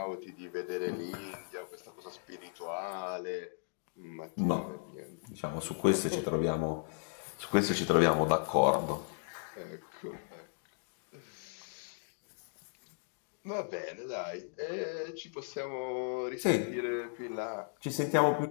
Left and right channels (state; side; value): silent; right; digital silence